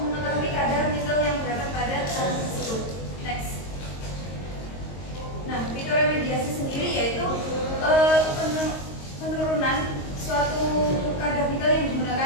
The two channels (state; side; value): late; right; 22 ms